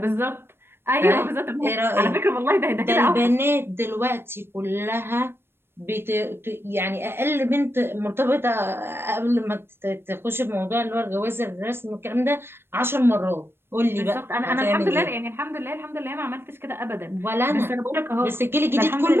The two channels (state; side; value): late; left; 0.11 ms